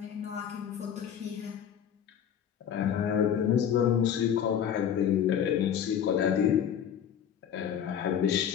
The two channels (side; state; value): right; quieter; 8.9 dB